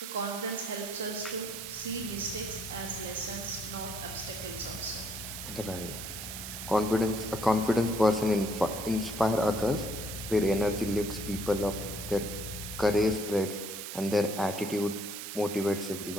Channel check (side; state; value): right; noise; hiss, 8 dB below the sound